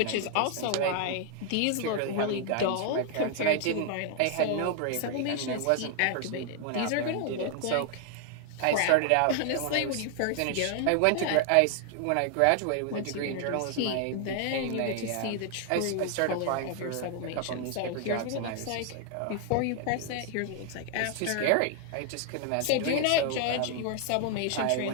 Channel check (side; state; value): both; different; correlation 0.00